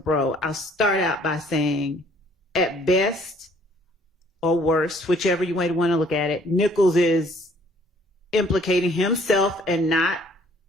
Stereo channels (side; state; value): both; normal; correlation 0.60